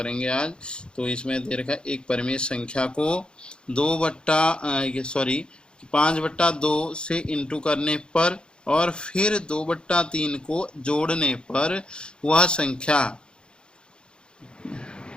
आज। तो इसमें दे रखा है एक परिमेय संख्या को 5/2 से इंटू करने पर और फिर 2/3 को जोड़ने पर वह संख्या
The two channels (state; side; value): late; right; 0.052 ms